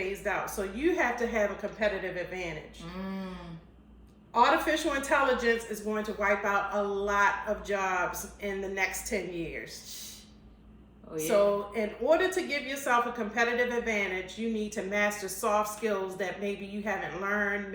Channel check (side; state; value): both; identical; correlation 1.00